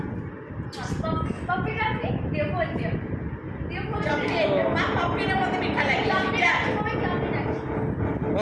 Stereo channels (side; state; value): both; identical; correlation 1.00